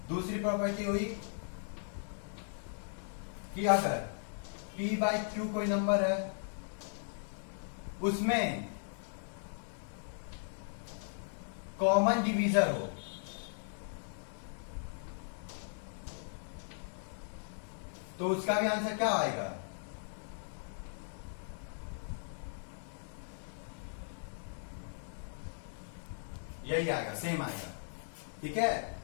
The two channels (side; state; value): right; silent; digital silence